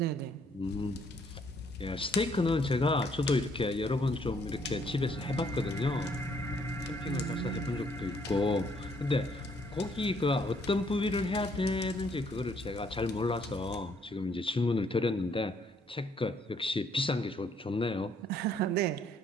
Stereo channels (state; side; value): normal; both; correlation 0.67